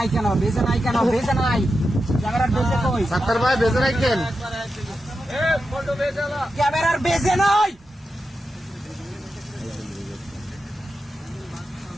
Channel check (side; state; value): both; normal; correlation 0.89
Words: কেন? ক্যামেরার বেজে কই? সাত্তার ভাই বেজে রাখেন। ক্যামেরার বেজে নাই।